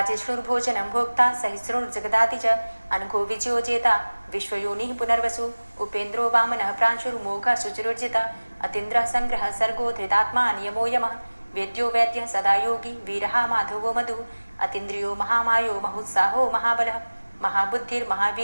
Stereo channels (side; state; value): both; inverted; correlation -1.00